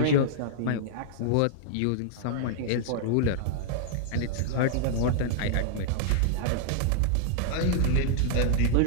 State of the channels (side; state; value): both; different; correlation -0.01